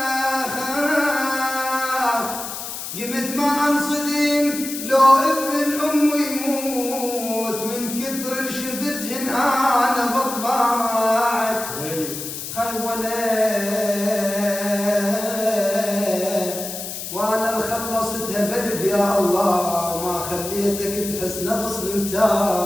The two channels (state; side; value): noise; left; hiss, 7 dB below the sound